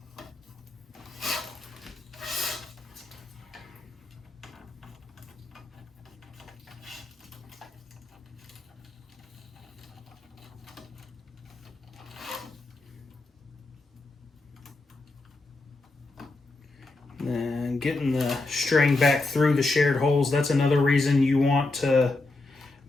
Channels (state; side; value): quieter; right; 3.2 dB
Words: And getting the string back through the shared holes, that's another reason you want to